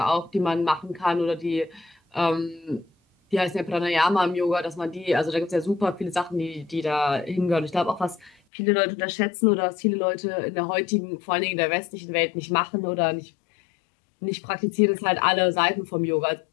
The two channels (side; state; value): right; drops out; at 8.3 s